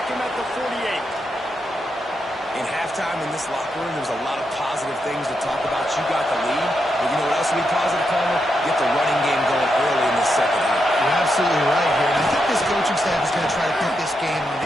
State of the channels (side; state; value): both; normal; correlation 0.83